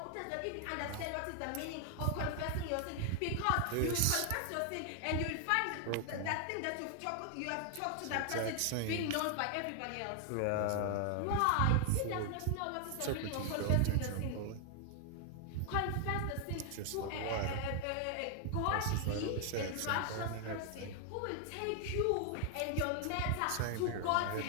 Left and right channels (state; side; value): different; both; correlation 0.00